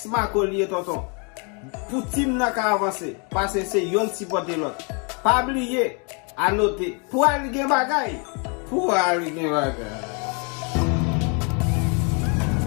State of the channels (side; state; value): right; quieter; 35.6 dB